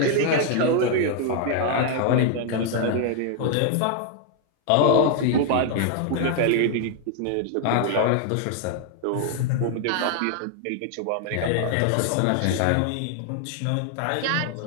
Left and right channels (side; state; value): both; different; correlation 0.00